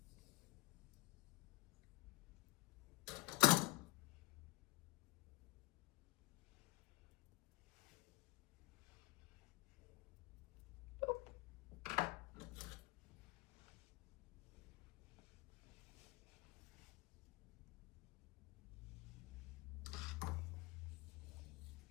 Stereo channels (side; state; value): right; quieter; 21.8 dB